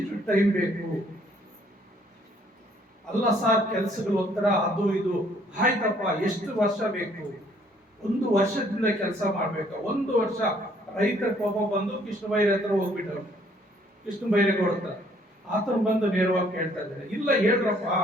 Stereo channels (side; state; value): both; normal; correlation 0.63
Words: ಟೈಮ್ ಬೇಕು? ಅಲ್ಲ ಸರ್, ಕೆಲಸಗಳು ಒಂಥರ ಅದು ಇದು. ಆಯ್ತಪ್ಪ, ಎಷ್ಟು ವರ್ಷ ಬೇಕು? 1 ವರ್ಷದಿಂದ ಕೆಲಸ ಮಾಡ್ಬೇಕ? 1 ವರ್ಷ. ರೈತರ ಕೋಪ ಬಂದು ಕೃಷ್ಣ ಬೈರೆ ಹತ್ರ ಹೋಗ್ಬಿಟ್ಟವ್ರು, ಕೃಷ್ಣ ಬೈರೇಗೌಡ ಹತ್ರ. ಆತನ ಬಂದು ನೇರವಾಗಿ ಕೇಳ್ತಾ ಇದ್ದಾರೆ, ಇಲ್ಲ ಹೇಳ್ರಪ್ಪ,